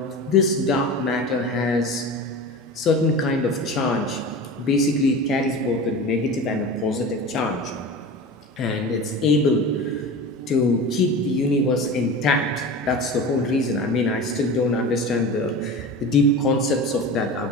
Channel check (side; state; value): both; normal; correlation 0.31